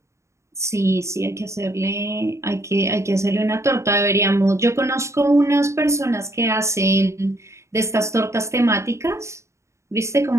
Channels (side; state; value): left; late; 0.14 ms